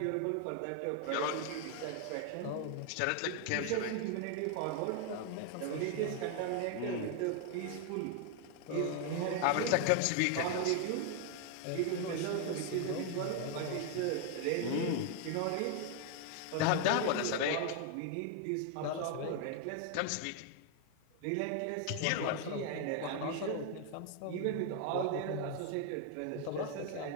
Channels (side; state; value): both; different; correlation 0.00